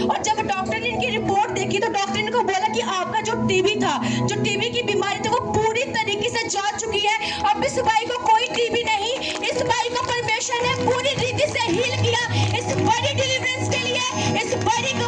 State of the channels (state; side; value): identical; both; correlation 1.00